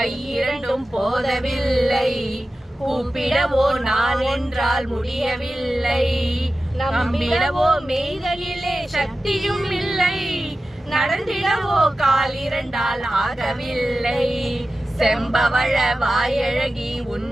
போதவில்லை கூப்பிடவோ நான் என்றால் முடியவில்லை நம்பிடவோ மெய்தலிலே சக்தியும் இல்லை நடந்திடவோ கால் இரண்டால் ஆகவில்லை செம்பவள வாயழகி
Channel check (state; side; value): normal; both; correlation 0.94